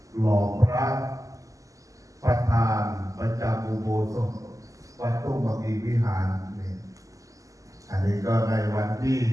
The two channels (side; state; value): left; late; 0.16 ms